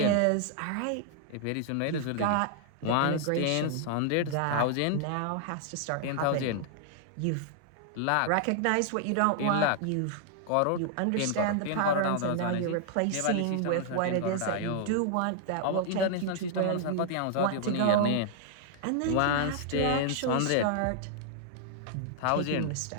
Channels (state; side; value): different; both; correlation -0.01